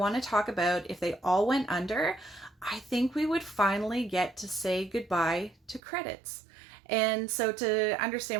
to talk about if they all went under, I think we would finally get to say goodbye to credits. And so to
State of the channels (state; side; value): drops out; left; at 5.8 s